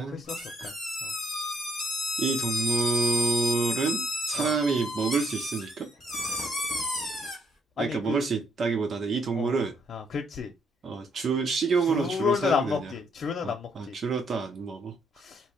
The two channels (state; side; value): normal; both; correlation 0.72